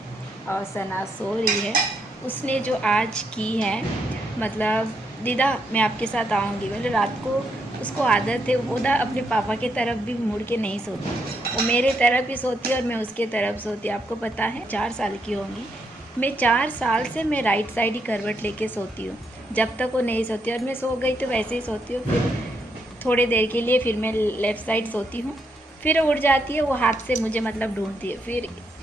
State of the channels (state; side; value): normal; both; correlation 0.78